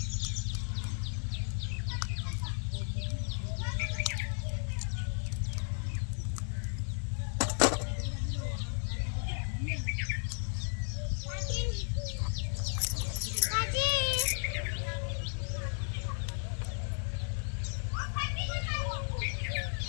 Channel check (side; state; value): right; silent; 55 dB below the other